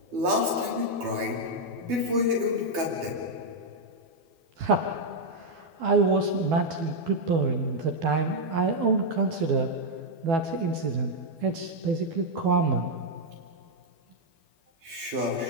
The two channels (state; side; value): late; left; 12 ms